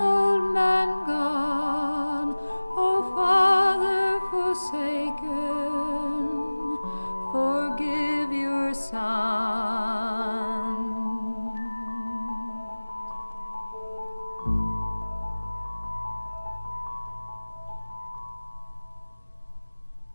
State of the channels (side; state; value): both; inverted; correlation -1.00